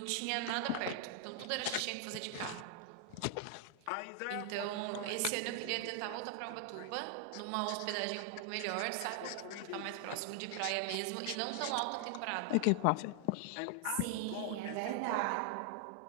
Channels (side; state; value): both; different; correlation 0.00